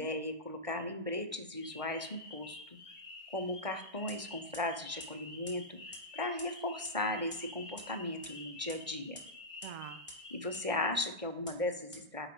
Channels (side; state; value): left; late; 1.6 ms